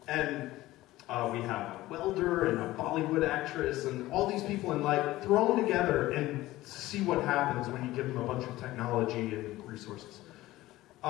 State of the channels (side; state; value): right; quieter; 17.0 dB